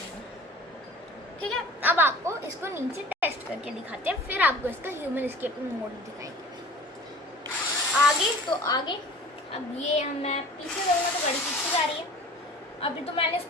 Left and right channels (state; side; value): normal; both; correlation 0.44